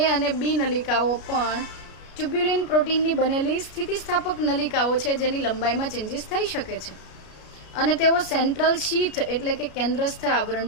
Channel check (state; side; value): late; right; 33 ms